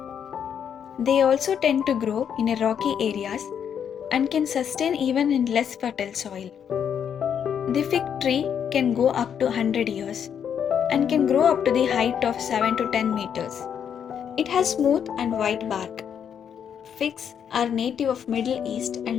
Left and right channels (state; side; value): quieter; right; 8.2 dB